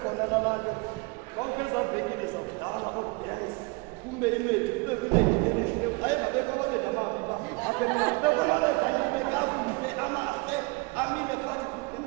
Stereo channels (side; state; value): left; quieter; 27.6 dB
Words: laa nto kwakho ezaa venkile zakudala oodansi kume inwethu kube kunengileyo ayengabekho amadoda amabi pha abekho amadoda kakuhle amahle amile phakathi